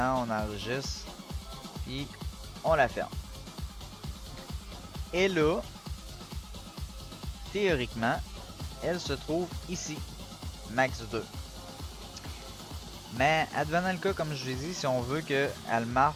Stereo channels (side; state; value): both; identical; correlation 1.00